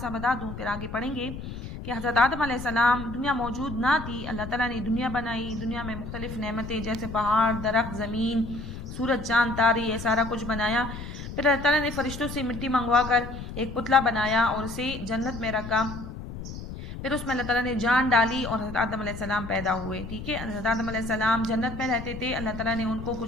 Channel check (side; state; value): left; noise; rumble, 9 dB below the sound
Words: بتا دوں پھر آگے پڑھیں گے کہ حضرت آدم علیہ السلام، دنیا موجود نہ تھی، اللہ تعالیٰ نے دنیا بنائی، دنیا میں مختلف نعمتیں جیسے پہاڑ، درخت، زمین، سورج، چاند، تارے، یہ سارا کچھ بنایا۔ پھر اللہ تعالیٰ نے فرشتوں سے مٹی منگوا کر ایک پتلا بنایا اور اسے جنت میں رکھا۔ پھر اس میں اللہ تعالیٰ نے جان ڈالی اور حضرت آدم علیہ السلام پیدا ہوئے، ٹھیک ہے؟ حضرت آدم علیہ السلام جنت میں رہتے تھے، اللہ تعالیٰ نے ان کو